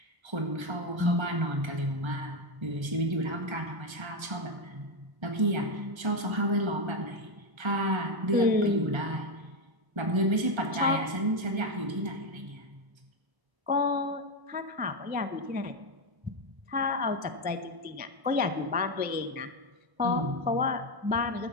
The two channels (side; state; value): left; late; 1.3 ms